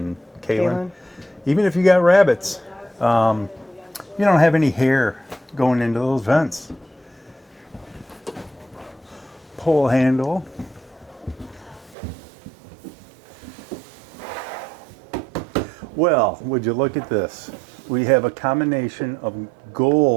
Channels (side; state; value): left; drops out; at 12.0 s